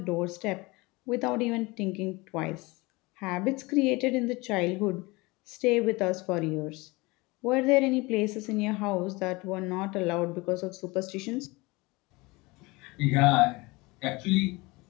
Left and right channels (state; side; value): quieter; right; 23.8 dB